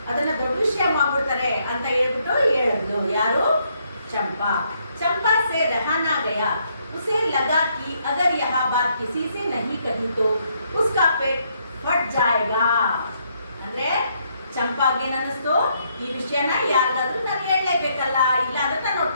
ಅದನ್ನ ದೊಡ್ಡ ವಿಷಯ ಮಾಡ್ಬಿಡ್ತಾರೆ ಅಂತ ಹೇಳ್ಬಿಟ್ಟು ಹೇಳಿದ್ಲು. ಯಾರು? ಚಂಪಾ. ಚಂಪಾ से रहा ना गया। उसे लगा कि अगर यह बात किसी से नहीं कही तो उसका पेट फट जाएगा. ಅಂದ್ರೆ ಚಂಪಾಗೆ ಅನ್ನಿಸ್ತು, ಈ ವಿಷಯನ ಯಾರಿಗಾದ್ರೂ ನಾನು ಹೇಳಲೇಬೇಕಲ್ಲ, ಇಲ್ಲ ಅಂದ್ರೆ ನನ್ನ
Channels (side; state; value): both; inverted; correlation -0.73